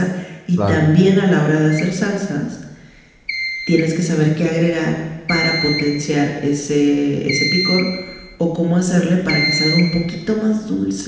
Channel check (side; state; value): both; identical; correlation 1.00